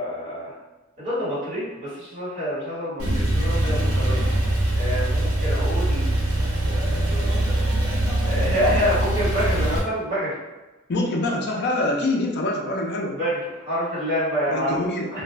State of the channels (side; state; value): both; normal; correlation 0.60